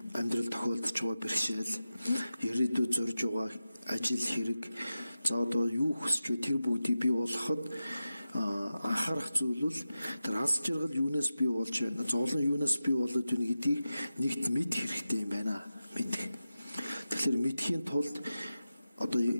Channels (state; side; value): inverted; both; correlation -0.93